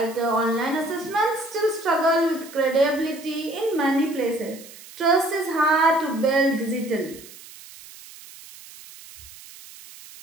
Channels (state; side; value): noise; right; hiss, 18 dB below the sound